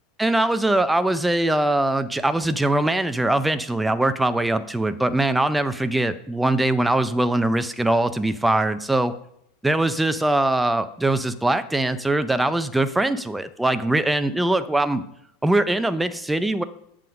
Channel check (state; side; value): normal; both; correlation 0.90